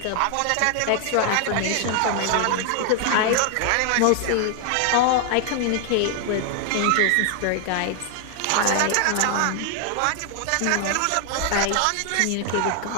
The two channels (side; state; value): both; different; correlation 0.00